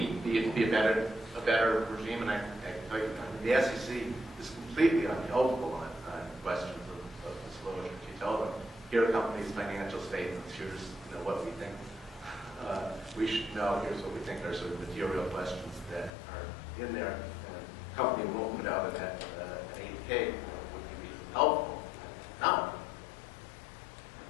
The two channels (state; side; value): drops out; right; at 16.1 s